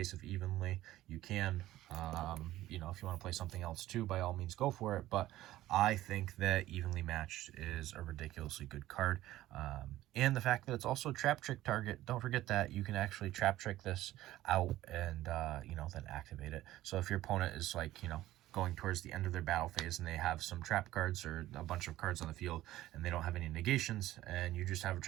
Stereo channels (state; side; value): quieter; left; 15.1 dB